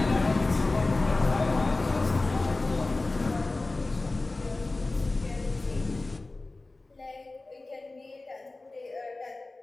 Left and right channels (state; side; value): quieter; right; 3.2 dB